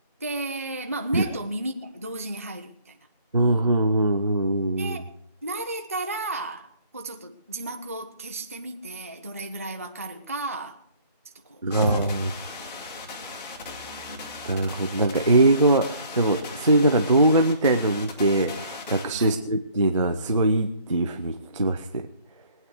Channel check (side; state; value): both; inverted; correlation -0.58